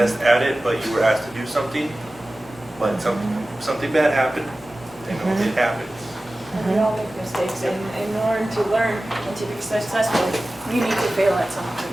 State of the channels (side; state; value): both; normal; correlation 0.96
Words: at it, but you were asked to do something. But something bad happened. It happens. And we all make mistakes, and in order to learn and to be successful, you need to fail at